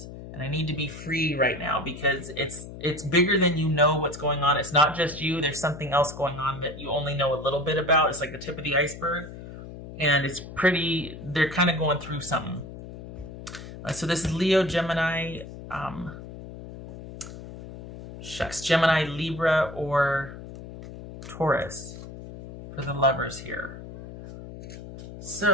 and I need to be free right now because it's bigger than you know what's going on. It's not just you. There's something else going on that you only know a little bit about. It's like the tip of the iceberg and they're kind of going through something. So this is Leo, Gemini, Gemini, Libra, or Taurus for the lovers here.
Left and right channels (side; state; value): left; noise; hum, 13 dB below the sound